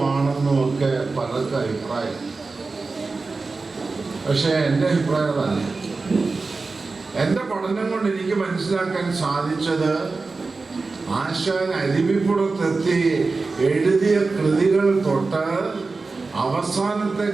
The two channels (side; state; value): left; quieter; 3.9 dB